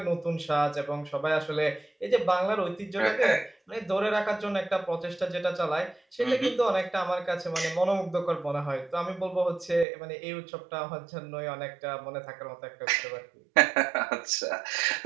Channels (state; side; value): drops out; left; at 9.9 s